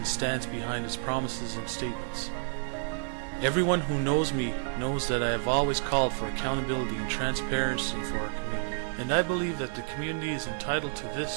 stands behind its promises and statements. Everyone who knows me knows that I have always called for accountability and transparency for our community, and I believe that the community is entitled to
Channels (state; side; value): silent; left; digital silence